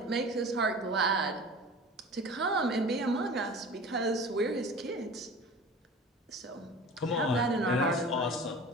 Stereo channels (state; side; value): normal; both; correlation 0.39